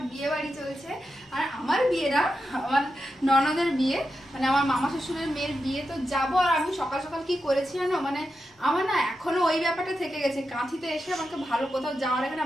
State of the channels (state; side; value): normal; both; correlation 0.88